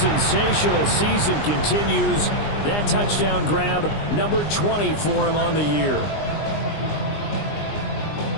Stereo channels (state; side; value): late; right; 20 ms